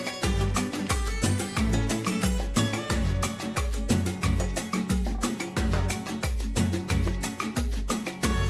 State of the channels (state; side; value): identical; both; correlation 1.00